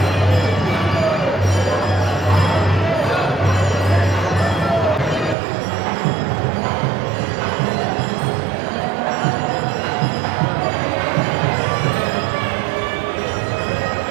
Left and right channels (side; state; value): left; drops out; at 5.4 s